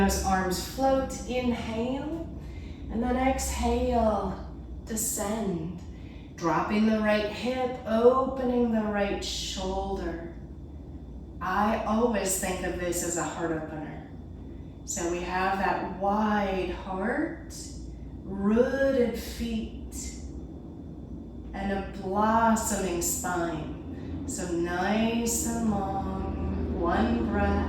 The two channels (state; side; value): identical; both; correlation 1.00